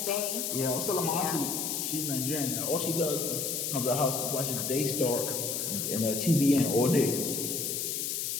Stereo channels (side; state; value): left; noise; hiss, 1 dB below the sound